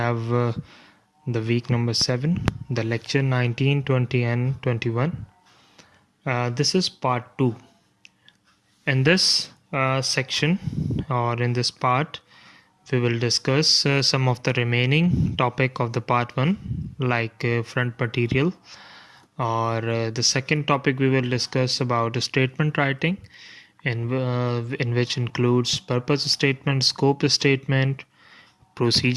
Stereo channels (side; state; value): both; identical; correlation 1.00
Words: the week number 7, the lecture 19, 20 and 21. This is part 2. In this section or in this part, we will discuss some of the remaining topic of the part 1 like front material, or the second topic we will discuss about statement writing in which includes purpose statement, scope statement,